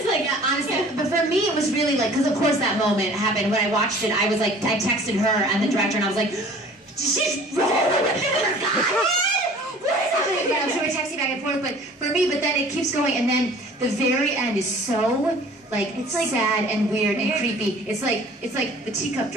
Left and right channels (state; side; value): normal; both; correlation 0.49